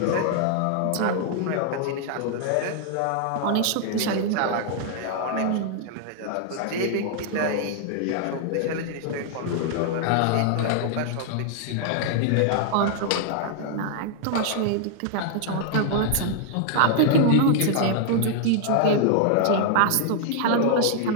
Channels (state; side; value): different; both; correlation -0.01